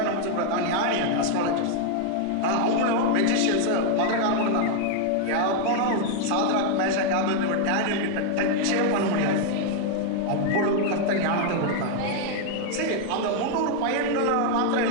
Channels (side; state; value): both; different; correlation 0.00